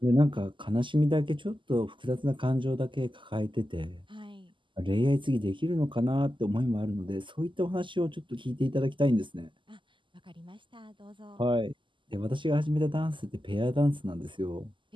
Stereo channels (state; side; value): late; left; 0.24 ms